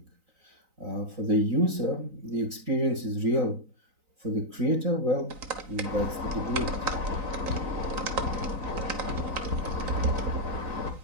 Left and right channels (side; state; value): left; late; 3.9 ms